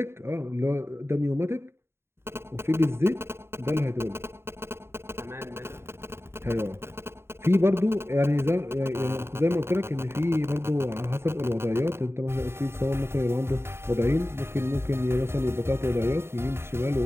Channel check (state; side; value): late; left; 0.12 ms